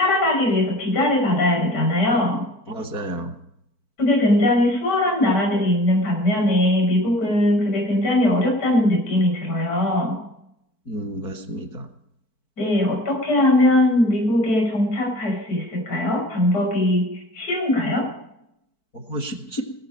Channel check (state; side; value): late; right; 4.5 ms